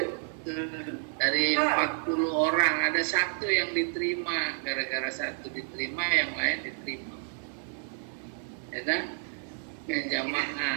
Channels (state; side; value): silent; left; digital silence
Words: Dari 40 orang ada satu yang diterima, gara-gara satu diterima yang lain diterima. Ya kan? Yang